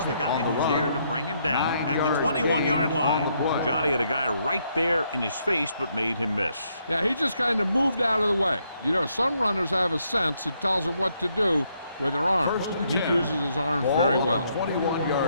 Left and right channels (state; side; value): inverted; both; correlation -0.74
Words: the guy who's there to bring him down at the 21-yard line. Johnny had a guy right there in his face, but made him miss. Yeah, he just kind of moved out of the way. You know, some runners have a sense that tells them what to do with their arms, and he uses his arms very well.